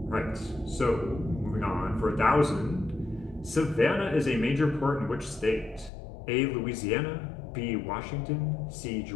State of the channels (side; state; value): right; drops out; at 5.9 s